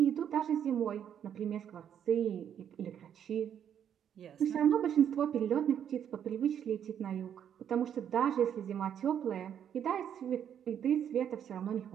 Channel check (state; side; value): quieter; left; 9.1 dB